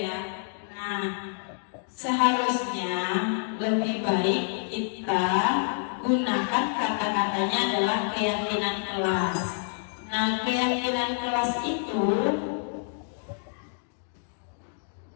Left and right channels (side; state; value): right; silent; digital silence